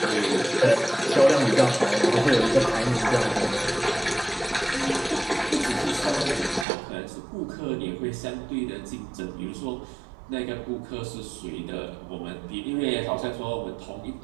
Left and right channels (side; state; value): left; drops out; at 6.7 s